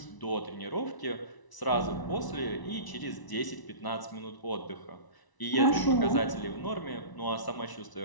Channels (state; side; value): late; right; 1.0 ms